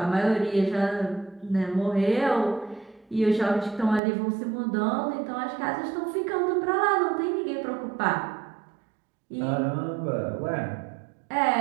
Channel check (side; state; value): left; drops out; at 4.0 s